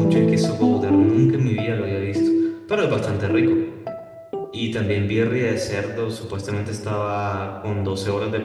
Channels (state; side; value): identical; both; correlation 1.00